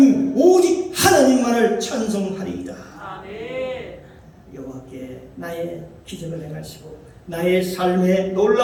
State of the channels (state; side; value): identical; both; correlation 1.00